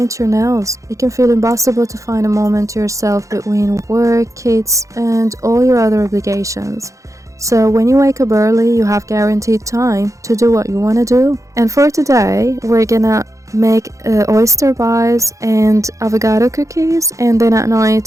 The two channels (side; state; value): left; late; 0.15 ms